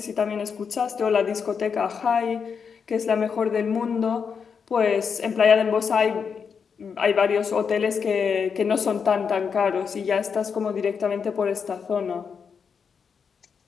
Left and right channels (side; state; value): right; quieter; 6.2 dB